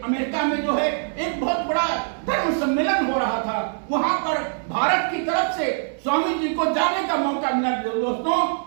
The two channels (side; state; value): left; silent; 60 dB below the other